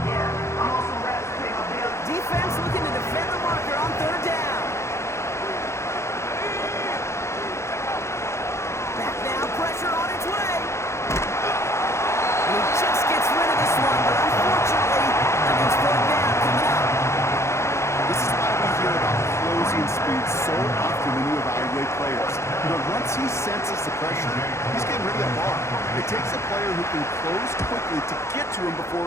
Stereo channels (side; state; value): right; late; 0.13 ms